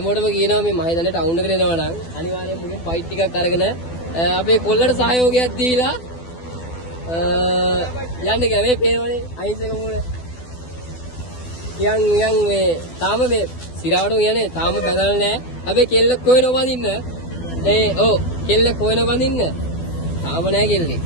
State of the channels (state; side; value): late; right; 12 ms